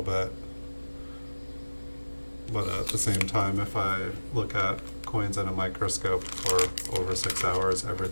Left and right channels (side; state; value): both; inverted; correlation -1.00